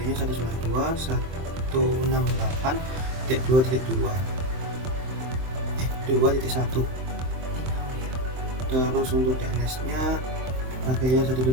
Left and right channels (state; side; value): late; left; 23 ms